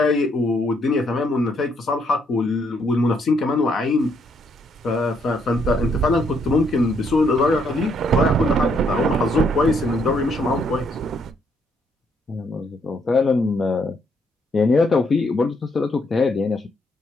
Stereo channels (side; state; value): both; normal; correlation 0.72